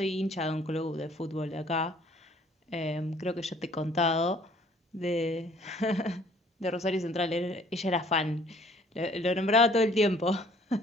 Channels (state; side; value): normal; both; correlation 0.58